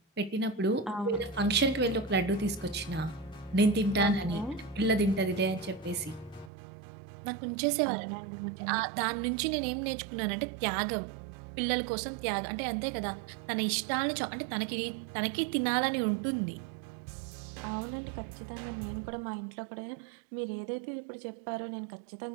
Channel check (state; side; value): drops out; left; at 6.5 s